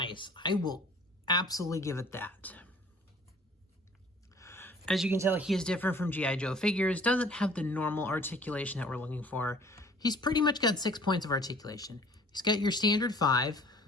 I will absolutely give it that. As you can tell, he is different from G.I. Joe figures. Doesn't have the normal articulation that we're looking for. He's pretty much got 6 points of articulation. He's got your standard 5,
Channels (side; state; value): both; normal; correlation 0.51